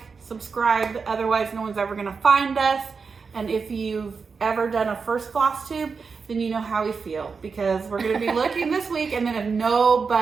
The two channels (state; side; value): quieter; left; 5.2 dB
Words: subscribe. Otherwise, no one's ever going to find us. And if you've ever done a first Floss Tube, then you know how we feel. Because we're going to be looking this week. And then if